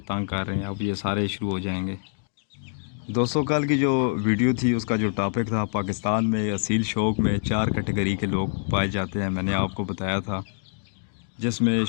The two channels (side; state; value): right; silent; 61 dB below the other